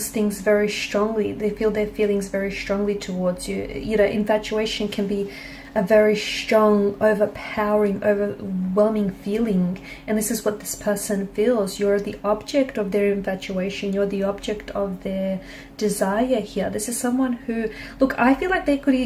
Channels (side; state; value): both; identical; correlation 1.00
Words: things very strongly. They feel their feelings very strongly towards you. Infatuation can be a very strong, overpowering, overwhelming feeling. And this is what this person feels. You're the object of their infatuation. You're the object of their desire here. This is someone who, look, I feel like they